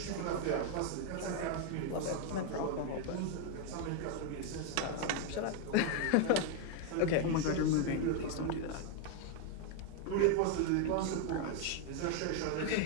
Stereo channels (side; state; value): both; different; correlation 0.01